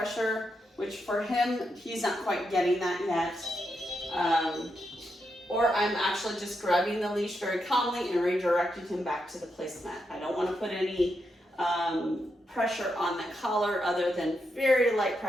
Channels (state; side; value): normal; both; correlation 0.83